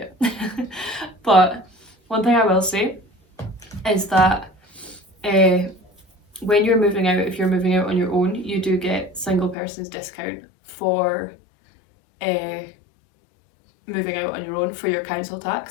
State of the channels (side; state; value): right; drops out; at 9.6 s